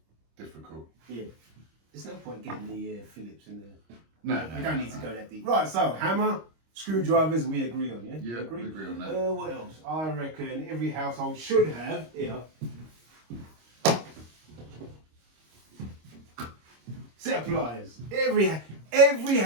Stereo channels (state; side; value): late; left; 25 ms